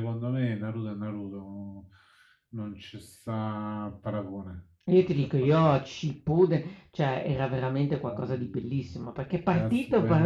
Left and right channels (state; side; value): identical; both; correlation 1.00